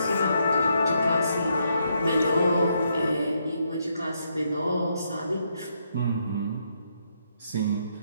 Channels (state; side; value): inverted; both; correlation -0.77